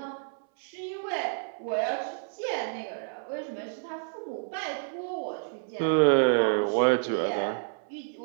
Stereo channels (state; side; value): silent; left; 58 dB below the other